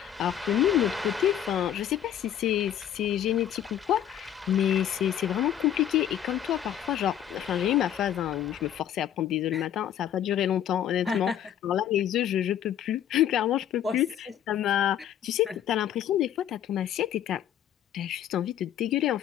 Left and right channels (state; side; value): quieter; right; 10.4 dB